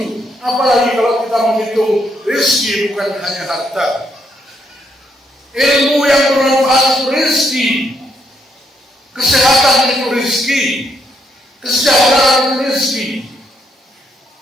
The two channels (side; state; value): both; normal; correlation 0.75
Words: Apalagi kalau kita menghitung rezeki bukan hanya harta. Ilmu yang bermanfaat itu rezeki, kesehatan itu rezeki, kesejahteraan itu rezeki,